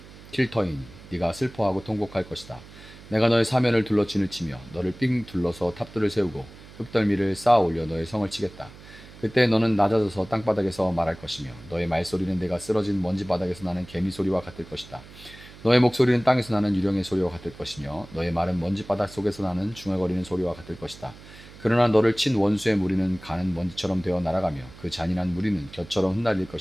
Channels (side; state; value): right; noise; hum, 19 dB below the sound